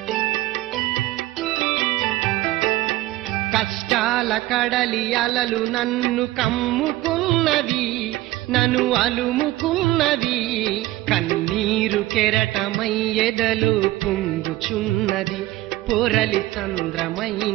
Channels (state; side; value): quieter; left; 17.2 dB